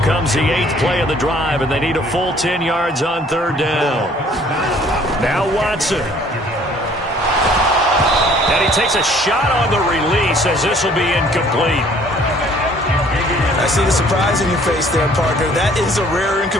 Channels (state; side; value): normal; both; correlation 0.57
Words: comes the 8th play of the drive, and they need a full 10 yards on 3rd down. Now Watson. And he takes a shot on the release as this will be incomplete. I see the surprise in your face there, partner. That is a rare